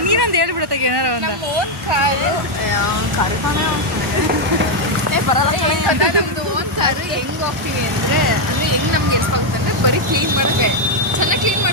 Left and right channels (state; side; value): normal; both; correlation 0.02